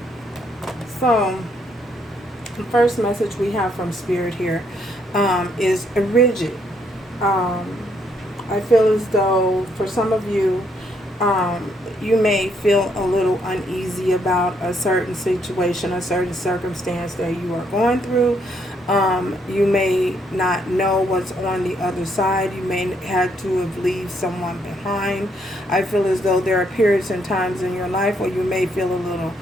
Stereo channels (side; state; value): both; normal; correlation 0.72